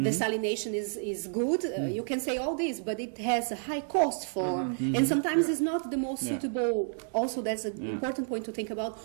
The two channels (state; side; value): silent; left; digital silence